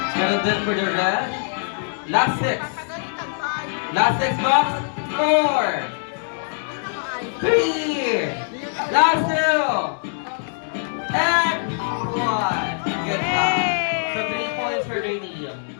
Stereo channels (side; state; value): right; silent; digital silence